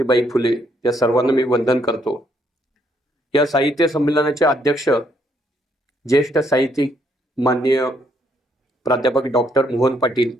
फुले या सर्वांना मी वंदन करतो. या साहित्य संमेलनाचे अध्यक्ष ज्येष्ठ साहित्यिक माननीय प्राध्यापक डॉक्टर मोहन पाटील,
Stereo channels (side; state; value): both; normal; correlation 0.71